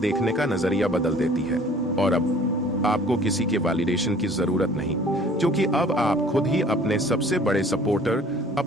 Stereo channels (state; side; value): normal; both; correlation 0.51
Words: का नजरिया बदल देती है। और अब आपको किसी के वैलिडेशन की जरूरत नहीं, क्योंकि अब आप खुद ही अपने सबसे बड़े सपोर्टर,